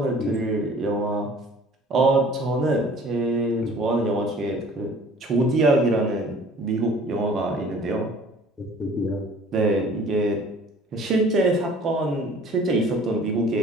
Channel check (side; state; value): both; normal; correlation 0.51